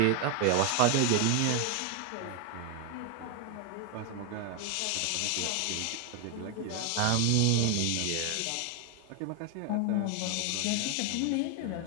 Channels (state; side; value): different; both; correlation 0.01